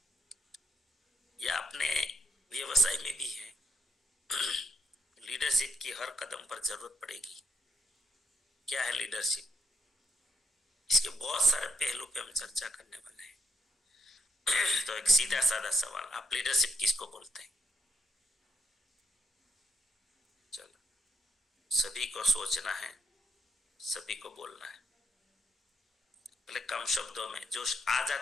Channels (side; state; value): both; normal; correlation 0.78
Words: या अपने व्यवसाय में भी हैं, लीडरशिप की हर कदम पर जरूरत पड़ेगी। क्या है लीडरशिप? इसके बहुत सारे पहलू पे हम चर्चा करने वाले हैं। तो एक सीधा साधा सवाल, आप लीडरशिप किसको बोलते हैं? चलो, सभी को सोचना है, सभी को बोलना है। पहले कम शब्दों में जो आ